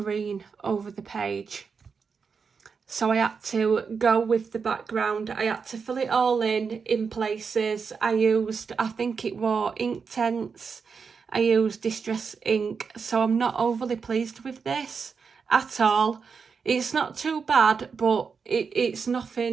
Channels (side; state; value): left; quieter; 5.6 dB